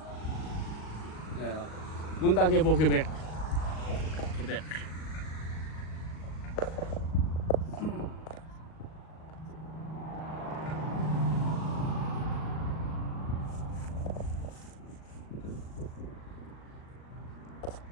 Montague, Quebec. Quebec.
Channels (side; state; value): right; late; 38 ms